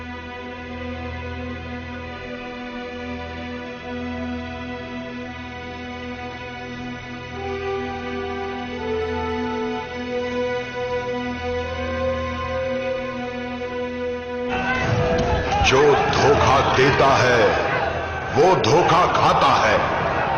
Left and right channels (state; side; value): identical; both; correlation 1.00